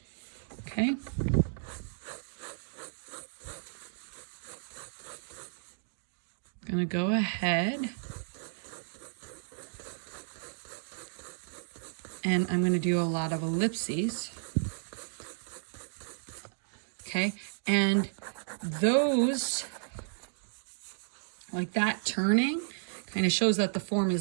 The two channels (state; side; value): silent; left; digital silence